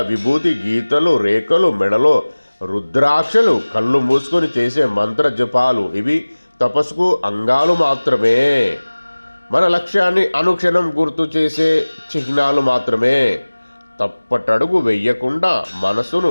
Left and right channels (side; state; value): both; inverted; correlation -1.00